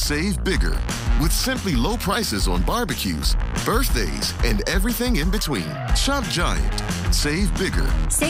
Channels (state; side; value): identical; both; correlation 1.00